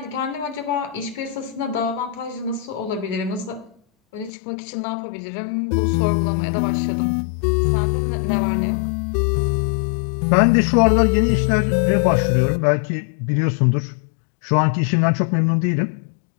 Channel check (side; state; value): right; drops out; at 4.3 s